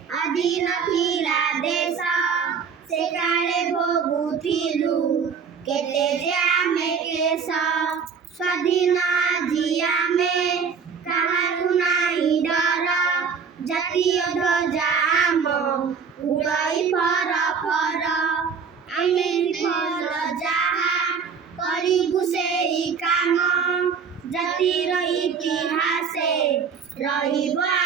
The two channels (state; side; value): quieter; left; 6.1 dB